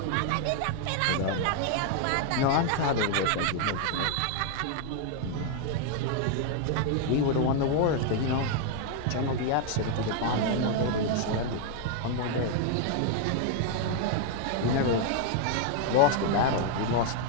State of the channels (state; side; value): different; both; correlation 0.00